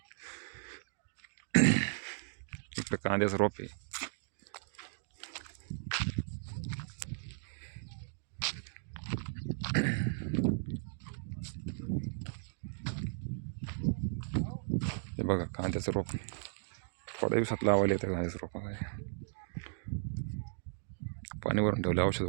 इकडे कांद्याचं रोप आहे. हे बघा कांद्याचं रोप थोड्या दिवसात लावायला येतं. कांद्याचं रोप पाणी भरून ठेवलं औषध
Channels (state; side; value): silent; left; digital silence